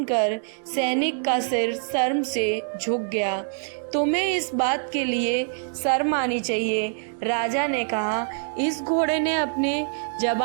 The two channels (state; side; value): silent; left; 58 dB below the other